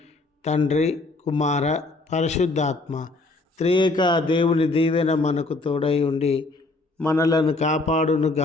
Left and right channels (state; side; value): quieter; right; 3.2 dB